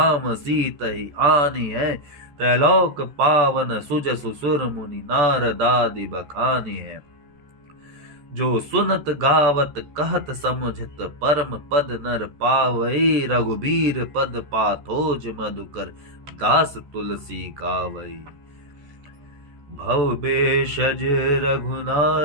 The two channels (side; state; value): left; late; 14 ms